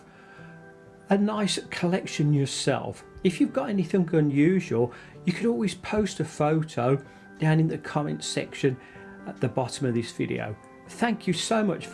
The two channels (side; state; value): both; identical; correlation 1.00